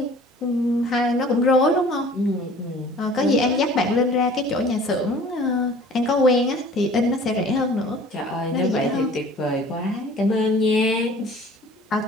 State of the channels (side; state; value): both; normal; correlation 0.48